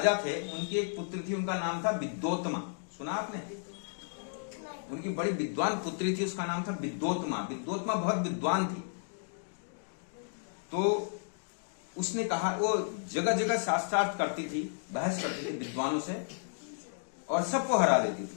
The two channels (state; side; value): silent; right; digital silence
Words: थे, उनकी एक पुत्री थी, उनका नाम था विद्योत्मा। सुना आपने? उनकी बड़ी विद्वान पुत्री थी, उसका नाम था विद्योत्मा। विद्योत्मा बहुत विद्वान थी। तो उसने कहा, वो जगह जगह शास्त्रार्थ करती थी, बहस करती थी विद्वानों से और सबको हरा देती